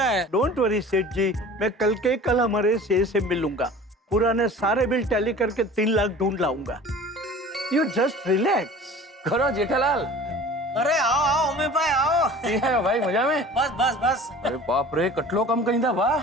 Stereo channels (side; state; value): both; normal; correlation 0.43